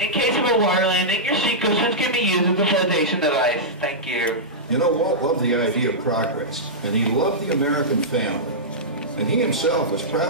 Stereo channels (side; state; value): both; normal; correlation -0.13